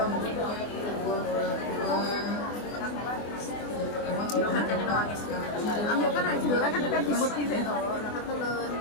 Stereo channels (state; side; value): late; right; 24 ms